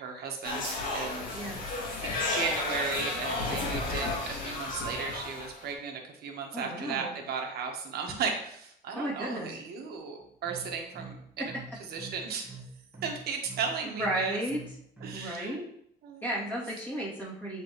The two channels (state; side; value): normal; both; correlation 0.18